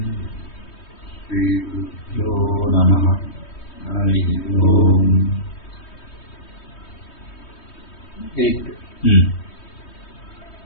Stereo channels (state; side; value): late; right; 3.2 ms